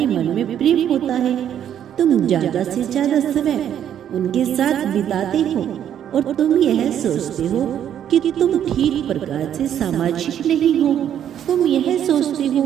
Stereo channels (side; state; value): left; quieter; 9.9 dB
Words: मन में प्रेम होता है, तुम ज्यादा से ज्यादा समय उनके साथ बिताते हो और तुम यह सोचते हो कि तुम ठीक प्रकार से सामाजिक नहीं हो। तुम यह सोचते